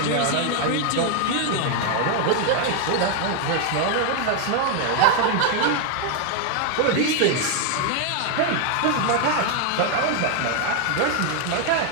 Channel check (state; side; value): different; both; correlation 0.01